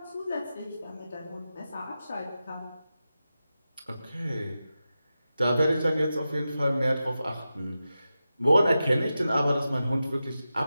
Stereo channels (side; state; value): both; inverted; correlation -0.92